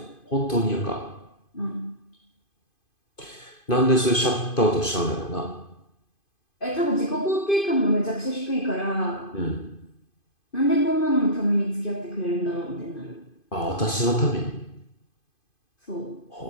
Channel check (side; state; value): right; late; 2.5 ms